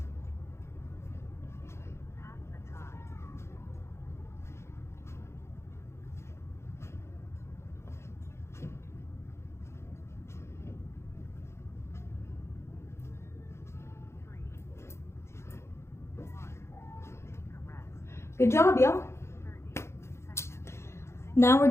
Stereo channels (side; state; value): right; late; 0.13 ms